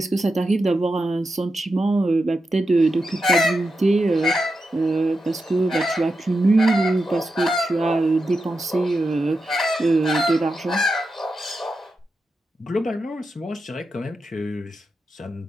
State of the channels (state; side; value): normal; both; correlation 0.88